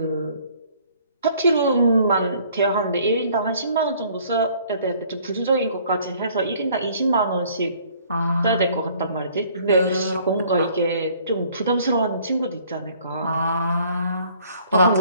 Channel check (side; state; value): both; inverted; correlation -0.58